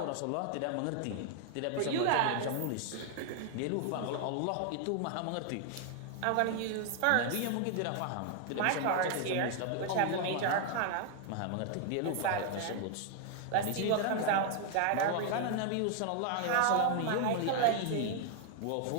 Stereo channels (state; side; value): different; both; correlation 0.00